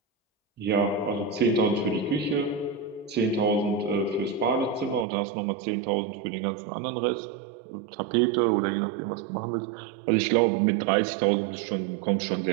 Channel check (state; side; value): drops out; left; at 5.1 s